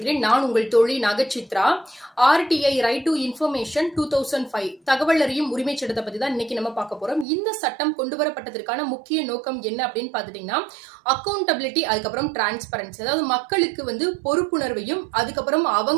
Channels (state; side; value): drops out; left; at 7.2 s